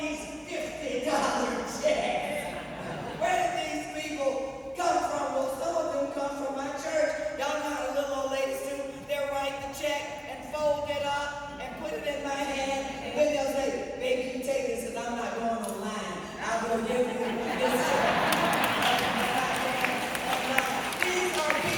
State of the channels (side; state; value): both; identical; correlation 1.00